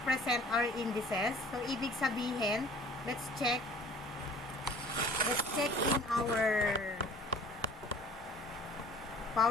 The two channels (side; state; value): both; normal; correlation 0.49